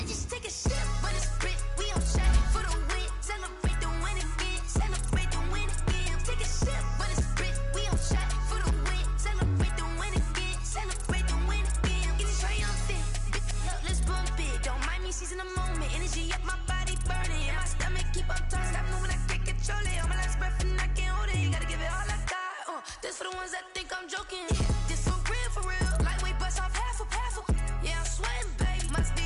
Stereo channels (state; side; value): identical; both; correlation 1.00